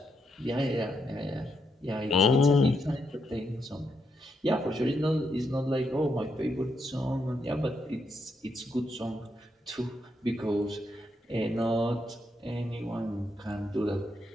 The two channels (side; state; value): both; normal; correlation 0.79